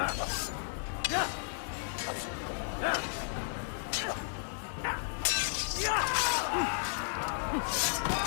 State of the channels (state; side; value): silent; right; 55 dB below the other